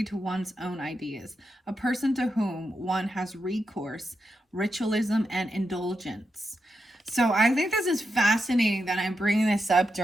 to one's own ideas, a person to whom one has recourse, ritualism, and indulgence. So I think this is fascinating that I'm bringing this up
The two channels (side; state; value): both; normal; correlation 0.86